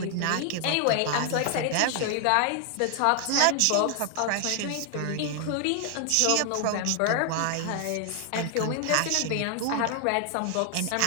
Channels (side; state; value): both; different; correlation 0.00